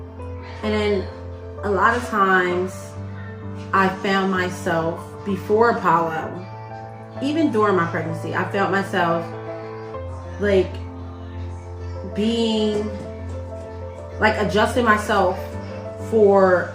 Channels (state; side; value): identical; both; correlation 1.00